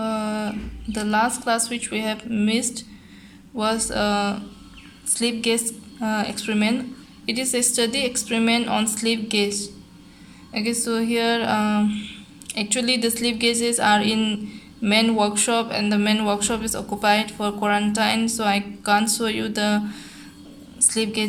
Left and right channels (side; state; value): both; identical; correlation 1.00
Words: last class which we have missed was slip gauge experiment. It is a study experiment on slip gauge. Okay, so here actually the slip gauges are in main workshop and the main workshop is occupied for quarantine, so I can't show you the slip